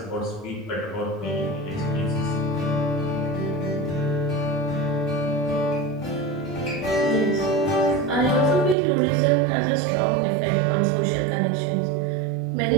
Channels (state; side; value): drops out; left; at 8.8 s